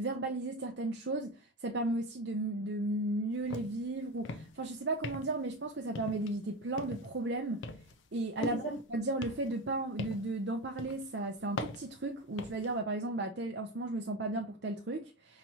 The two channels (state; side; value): normal; both; correlation 0.22